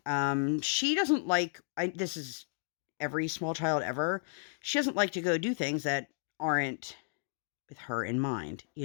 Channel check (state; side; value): silent; right; digital silence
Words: She doesn't like, this is every small child ever. She doesn't like to go do things that aren't with her in mind,